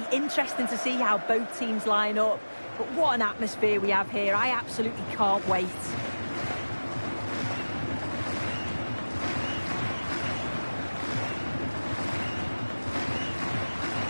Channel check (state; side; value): inverted; both; correlation -1.00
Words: interesting to see how both teams line up. But what an atmosphere we have here. I absolutely can't wait.